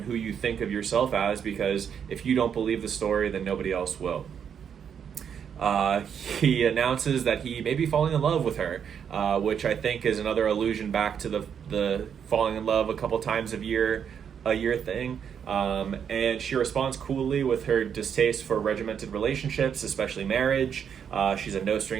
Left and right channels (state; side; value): quieter; left; 7.8 dB